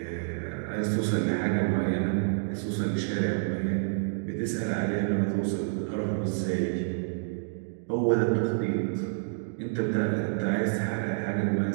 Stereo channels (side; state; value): left; silent; digital silence